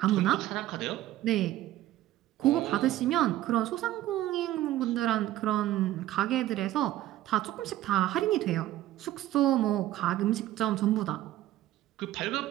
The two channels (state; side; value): quieter; left; 14.4 dB